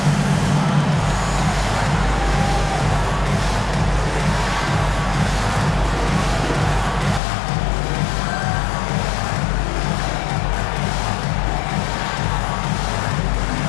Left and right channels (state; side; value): drops out; right; at 7.2 s